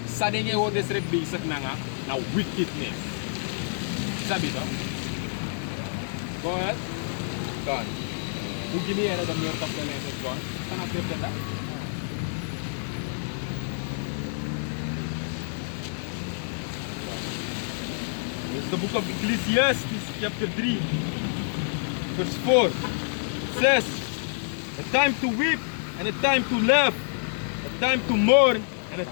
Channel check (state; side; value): silent; right; 60 dB below the other